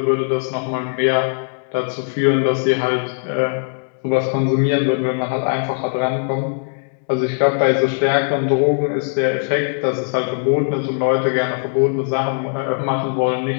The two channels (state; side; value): silent; right; 66 dB below the other